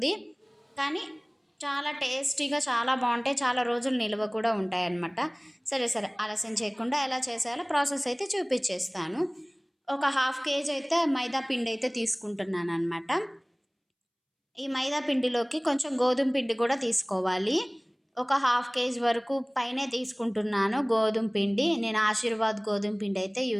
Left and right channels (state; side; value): identical; both; correlation 1.00